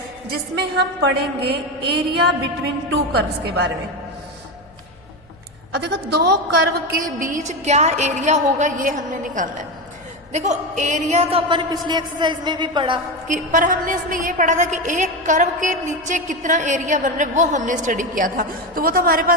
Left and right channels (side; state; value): left; noise; hum, 28 dB below the sound